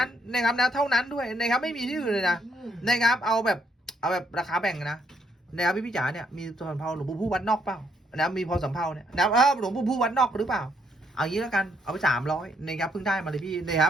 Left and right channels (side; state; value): both; normal; correlation 0.72